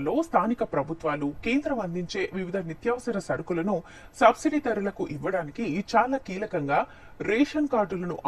స్థానిక ప్రభుత్వాలు కేంద్రం అందించే వివిధ నిత్యావసర సరుకులను సబ్సిడీ ధరలకు ఇవ్వడానికి చాలా కీలకంగా రేషన్ కార్డులను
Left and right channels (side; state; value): both; identical; correlation 1.00